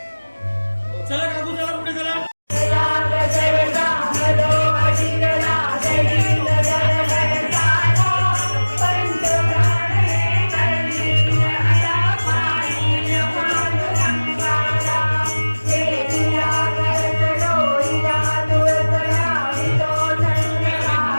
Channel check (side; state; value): both; inverted; correlation -1.00